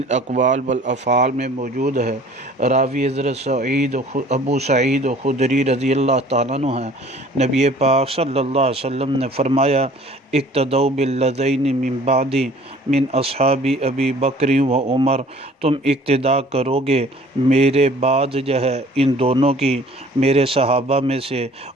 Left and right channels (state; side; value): normal; both; correlation 0.51